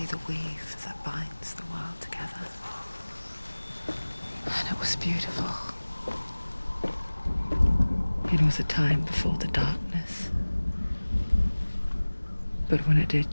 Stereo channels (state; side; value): inverted; both; correlation -1.00